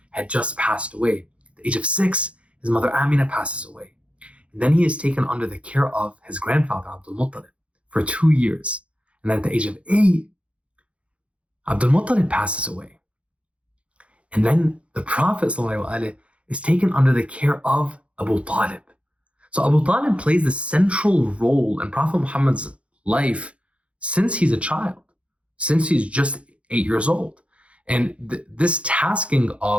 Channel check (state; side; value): late; left; 0.062 ms